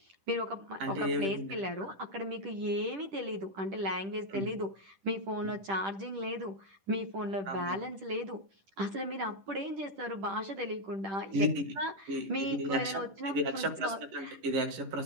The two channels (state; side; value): late; left; 10 ms